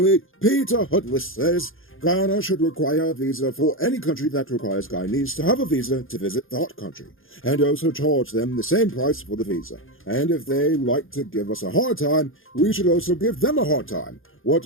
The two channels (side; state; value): right; late; 0.59 ms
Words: Peter Hudless says, Guyana should require a visa for any country that requires Guyanese to have a visa to visit that country, and also charge them the same price for the visa. And if they like to give us a hard time, we should also give them a hard time.